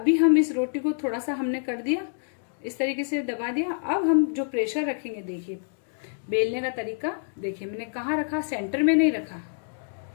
हम इस रोटी को थोड़ा सा हमने कर दिया, इस तरीके से दबा दिया। अब हम जो प्रेशर रखेंगे, देखिए बेलने का तरीका देखिए, मैंने कहाँ रखा, सेंटर में नहीं रखा,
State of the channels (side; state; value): right; silent; digital silence